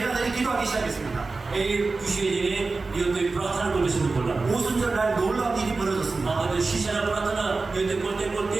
기도하기 시작했습니다. এই বিষয়ে জেনে নিয়ত প্রার্থনা করতে শুরু করলাম 오순절날 놀라운 일이 벌어졌습니다. আমাদের শিষ্যরা প্রার্থনা নিয়ত করতে করতে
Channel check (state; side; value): quieter; left; 3.8 dB